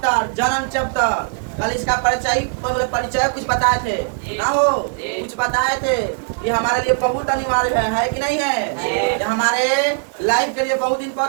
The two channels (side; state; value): left; silent; digital silence